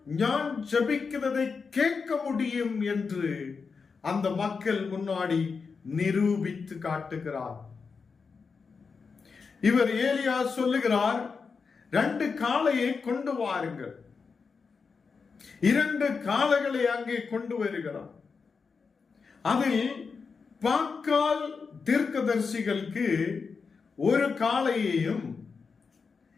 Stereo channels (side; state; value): right; quieter; 5.1 dB